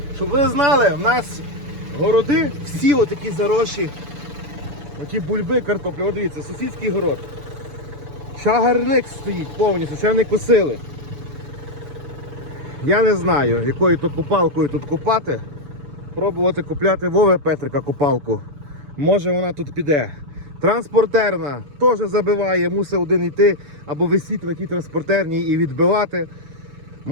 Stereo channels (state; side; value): late; left; 7.0 ms